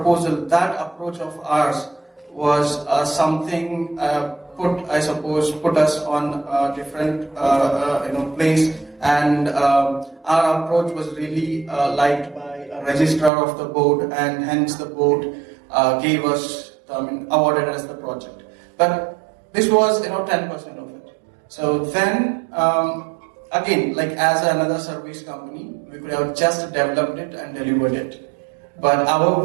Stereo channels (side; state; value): left; drops out; at 13.3 s